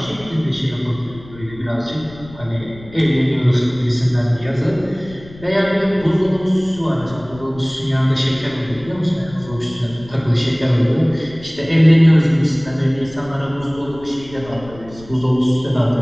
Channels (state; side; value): noise; left; rumble, 19 dB below the sound